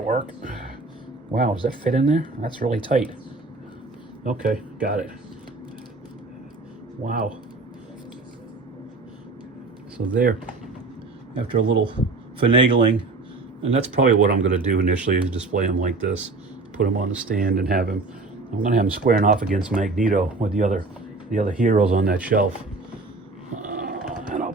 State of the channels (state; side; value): quieter; left; 3.5 dB